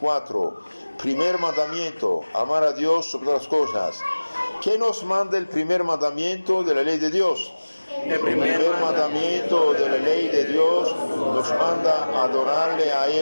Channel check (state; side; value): inverted; both; correlation -1.00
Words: Primer mandamiento, amar a Dios sobre todas las cosas. ¿Qué nos manda el primer mandamiento de la ley de Dios? El primer mandamiento de la ley de Dios nos manda adorarle a